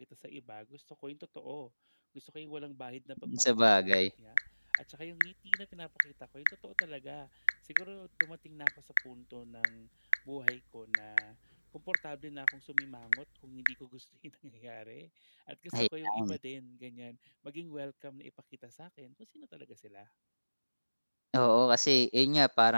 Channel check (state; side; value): inverted; both; correlation -1.00